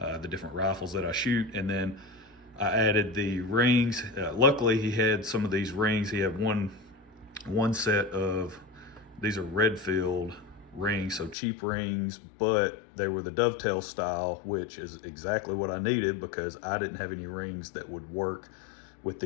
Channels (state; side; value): drops out; right; at 11.4 s